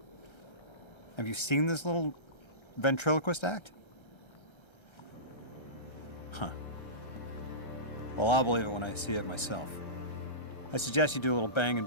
Have you seen this little ventriloquist act? Huh. Well, I'll believe it when I see it myself. I suggest you do a little bang and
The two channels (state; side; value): late; right; 1.3 ms